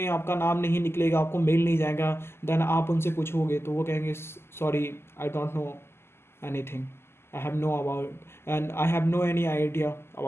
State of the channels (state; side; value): late; right; 0.12 ms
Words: आपका नाम नहीं निकलेगा, आपको मेल नहीं जाएगा, देन आप उनसे पूछोगे तो वो कहेंगे sorry I don't know anything, I have no about and I have no any idea